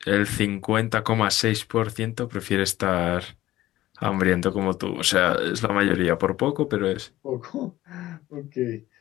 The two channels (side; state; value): right; quieter; 15.3 dB